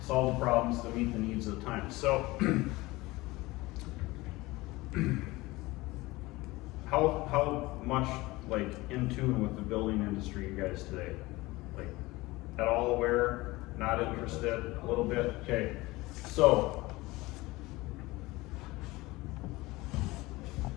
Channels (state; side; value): quieter; right; 20.6 dB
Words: solve the problems to meet the needs of the time. So, how much like in tune with the building industry you guys today? Like at all aware, not interested, a little bit? Okay, so